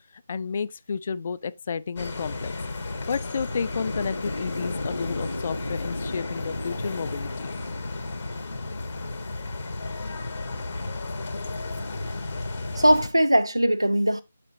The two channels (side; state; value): both; inverted; correlation -0.93